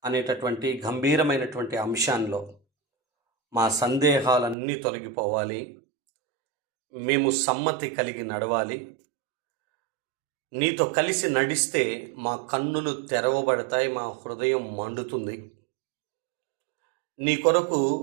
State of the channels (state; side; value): drops out; left; at 4.5 s